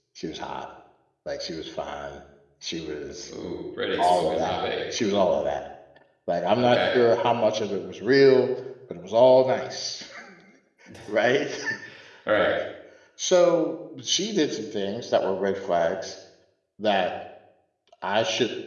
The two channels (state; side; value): identical; both; correlation 1.00